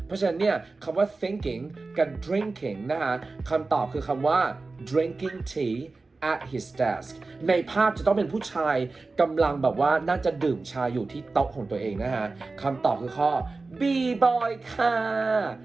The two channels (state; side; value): quieter; left; 3.7 dB